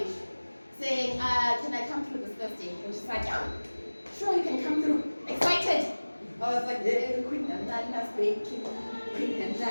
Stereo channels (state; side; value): inverted; both; correlation -1.00